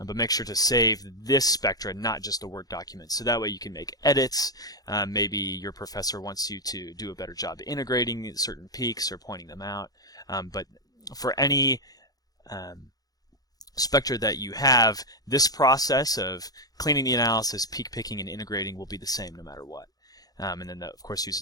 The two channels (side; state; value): right; late; 0.18 ms